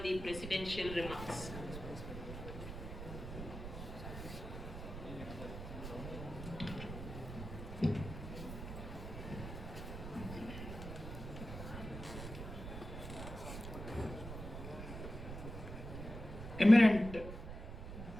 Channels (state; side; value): noise; right; rumble, 8 dB below the sound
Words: the presidential remarks. Eminent